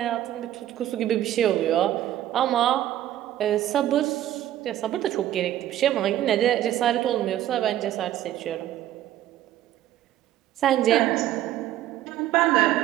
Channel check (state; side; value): quieter; left; 12.8 dB